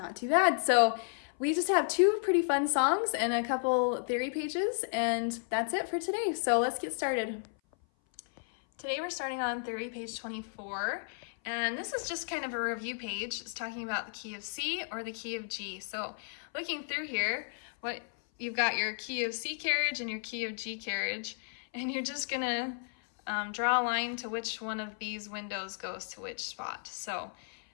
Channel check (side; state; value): right; silent; 56 dB below the other